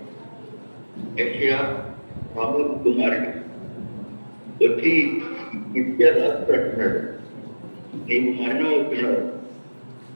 యెషయా ఆమోస్ కుమారుడు వచ్చి హిజ్కియా రాజు అంటున్నాడు, నీవు మరణం అవుతున్నావు,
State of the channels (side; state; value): both; inverted; correlation -1.00